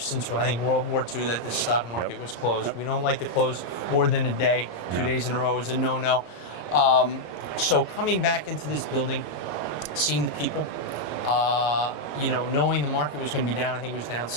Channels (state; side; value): late; right; 33 ms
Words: since, I think, World War II that the stock market was closed. We don't like to close more than a day. 2 days in a row is a no-no. So coming back into this building, seeing the people, knowing the market was going to be down, I think it was down